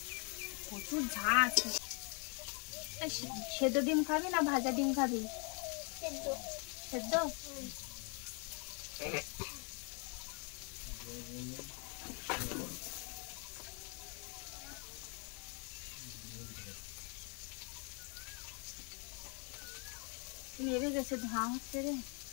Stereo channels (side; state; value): right; quieter; 36.7 dB